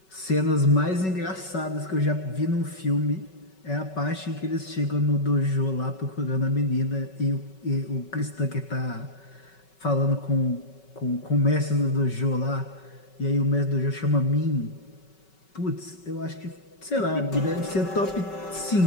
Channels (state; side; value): late; right; 5.3 ms